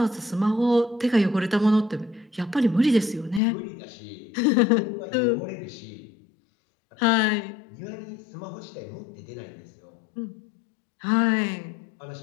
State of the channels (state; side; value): drops out; right; at 3.4 s